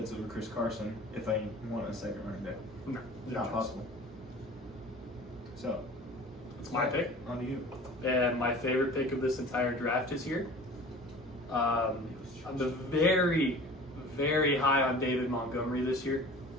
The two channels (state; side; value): normal; both; correlation 0.42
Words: over Chris Carson if I want a second running back. No. Not possible. So, It's my pick. on to you. And my favorite pick of this entire draft is here. I'm very, very high on David Montgomery this year.